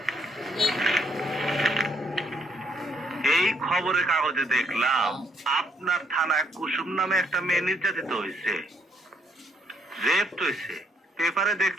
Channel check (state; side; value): normal; both; correlation 0.70